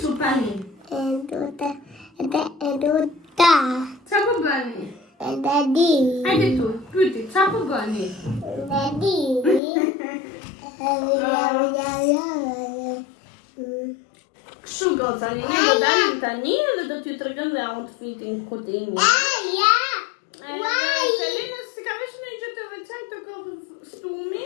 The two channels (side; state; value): right; drops out; at 9.6 s